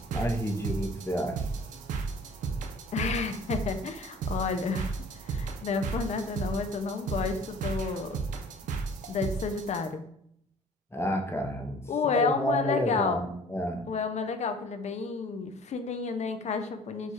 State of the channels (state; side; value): normal; both; correlation 0.50